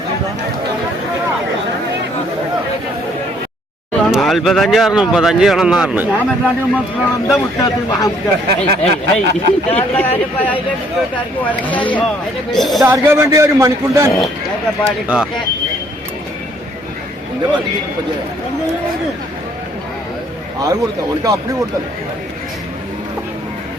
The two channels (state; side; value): normal; both; correlation 0.64